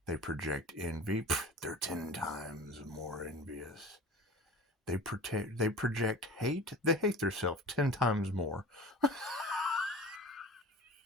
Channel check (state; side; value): normal; both; correlation 0.38